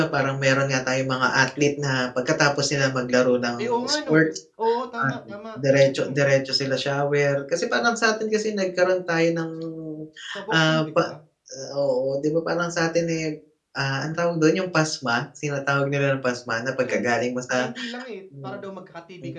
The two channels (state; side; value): identical; both; correlation 1.00